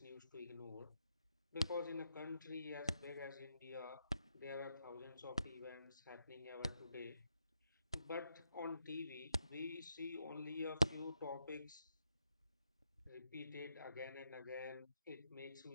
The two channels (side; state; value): both; inverted; correlation -0.79